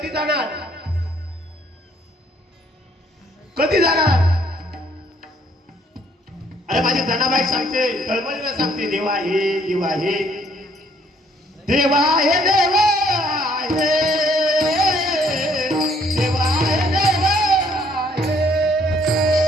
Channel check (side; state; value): both; normal; correlation 0.64